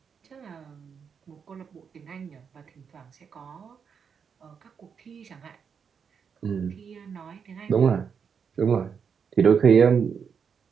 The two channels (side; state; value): left; quieter; 6.7 dB